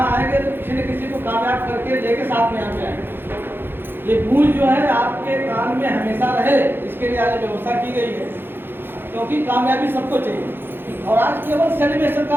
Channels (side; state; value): left; late; 0.10 ms